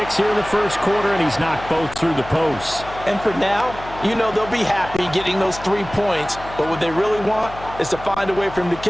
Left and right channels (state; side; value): noise; left; hum, 15 dB below the sound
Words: here in the first quarter, and he's knocked both through the posts. And for now, you know they'll be happy getting those 3 points, but what they really want is to find a way for him to